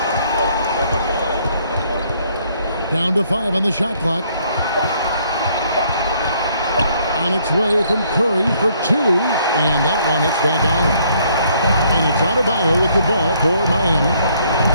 Down to 5 on the shot clock. On its way from Curry for 2. And that one hits back out. And it's Adebayo with the ball for Miami.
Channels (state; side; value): inverted; both; correlation -0.66